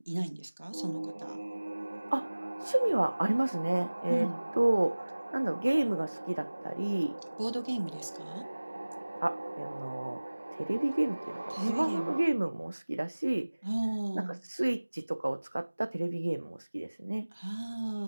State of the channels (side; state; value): both; inverted; correlation -1.00